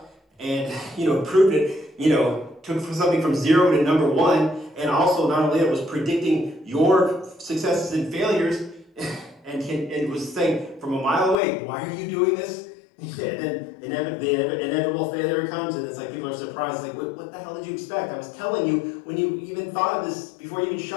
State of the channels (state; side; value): drops out; right; at 11.4 s